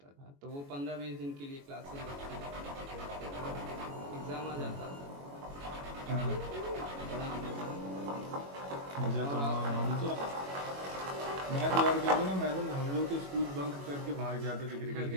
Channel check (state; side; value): late; left; 21 ms